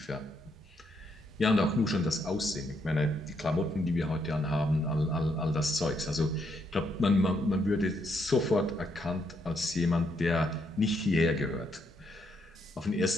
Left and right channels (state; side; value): normal; both; correlation 0.76